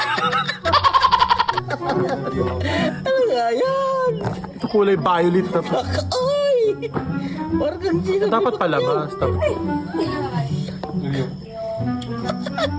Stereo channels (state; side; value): identical; both; correlation 1.00